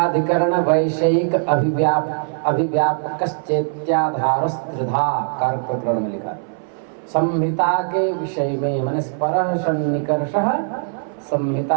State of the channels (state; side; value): silent; left; 62 dB below the other